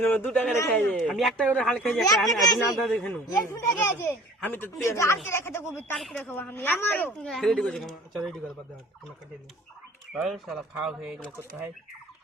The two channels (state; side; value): normal; both; correlation 0.47